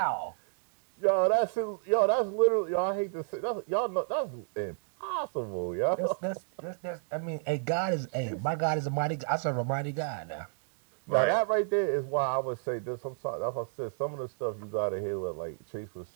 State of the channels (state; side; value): silent; left; digital silence